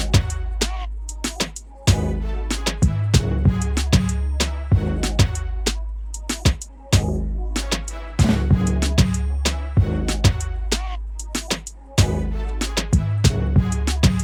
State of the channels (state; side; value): identical; both; correlation 1.00